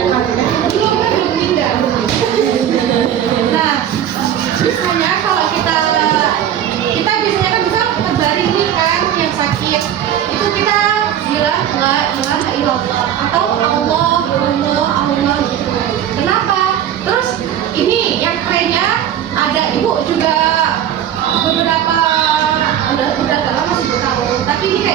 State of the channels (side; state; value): left; quieter; 10.2 dB